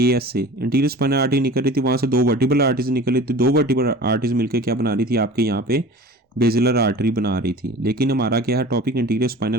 एएस से इंटीरियर स्पाइनल आर्टरी निकल रही थी, वहां से दो वर्टिब्रल आर्टरीज निकल रही थी, दो वर्टिब्रल आर्टरीज मिलकर क्या बना रही थी, आपके यहाँ पे बेसिलर आर्टरी बना रही थी। लेकिन हमारा क्या है टॉपिक, इंटीरियर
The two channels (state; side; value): normal; both; correlation 0.40